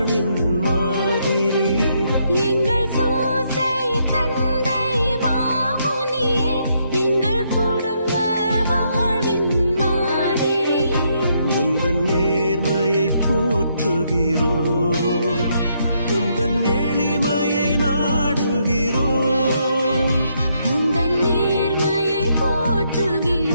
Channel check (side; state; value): both; inverted; correlation -0.75